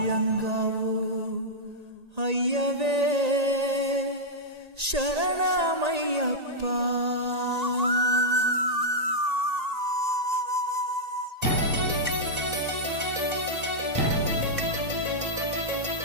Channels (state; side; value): late; left; 1.8 ms